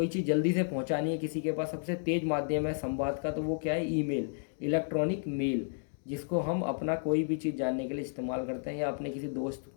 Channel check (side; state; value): right; silent; digital silence